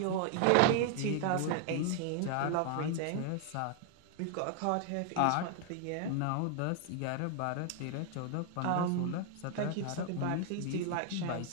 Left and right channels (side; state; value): both; different; correlation 0.00